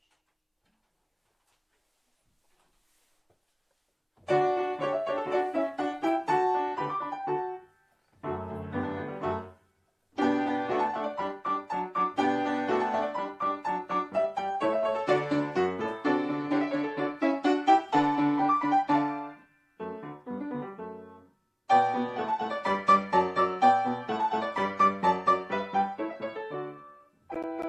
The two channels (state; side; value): identical; both; correlation 1.00